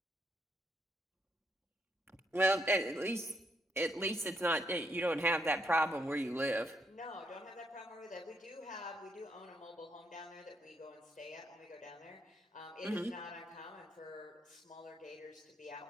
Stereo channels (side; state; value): both; normal; correlation 0.75